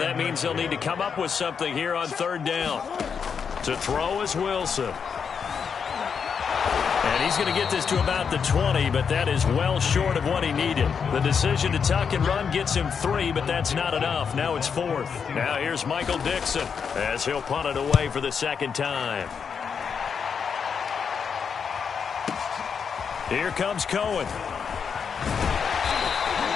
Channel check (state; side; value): quieter; right; 6.5 dB